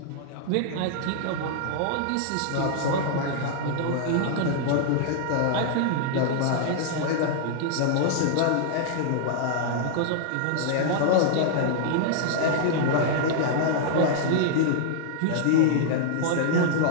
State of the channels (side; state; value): both; different; correlation -0.01